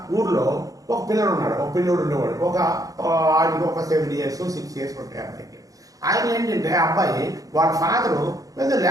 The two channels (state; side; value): late; left; 0.17 ms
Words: ఊర్లో ఒక పిల్లడు ఉన్నాడు, ఉండేవాడు. ఆడికి ఒక 7 years 6 years ఉంటాయి అబ్బాయికి. ఆయన ఏంటంటే అబ్బాయి వాళ్ళ ఫాదరు పెద్ద